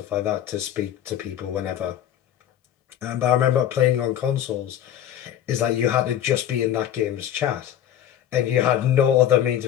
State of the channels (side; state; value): right; quieter; 10.9 dB